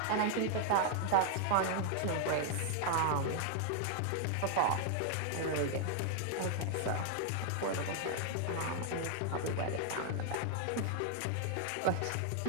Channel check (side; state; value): both; different; correlation 0.00